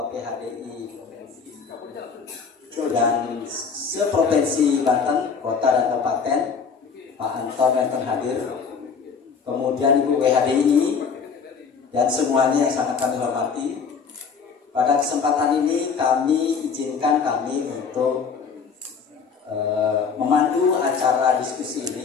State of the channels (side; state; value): right; quieter; 5.9 dB